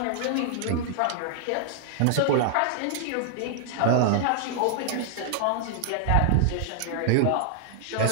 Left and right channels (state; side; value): different; both; correlation -0.01